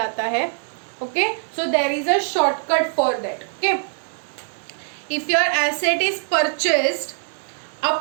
है. Okay, so there is a shortcut for that. Okay, if your asset is purchased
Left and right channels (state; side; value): silent; left; digital silence